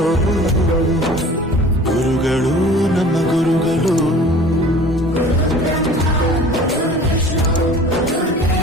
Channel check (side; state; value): both; normal; correlation 0.45